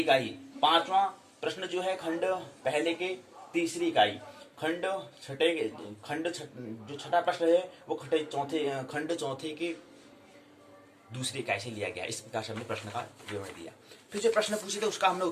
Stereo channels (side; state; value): both; identical; correlation 1.00